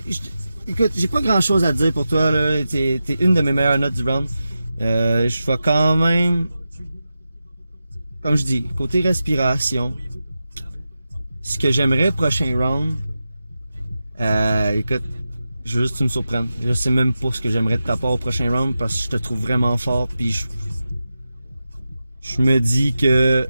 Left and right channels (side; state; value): both; inverted; correlation -0.91